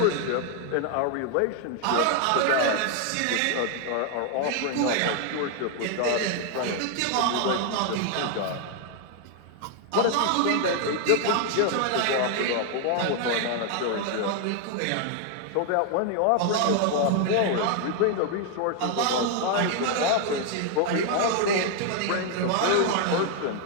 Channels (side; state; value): both; different; correlation 0.00